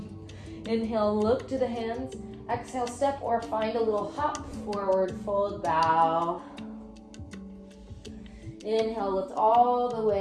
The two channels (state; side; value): identical; both; correlation 1.00